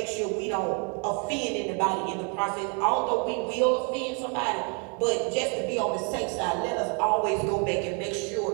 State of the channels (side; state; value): left; quieter; 36.8 dB